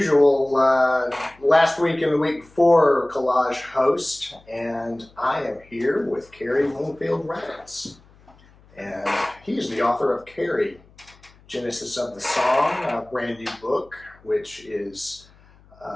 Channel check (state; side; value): noise; left; hum, 28 dB below the sound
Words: last week and the week before Collage host, and I am here with Cary Raditz. And he's the author of Cary, Genesis of the Song, a brand new book, which is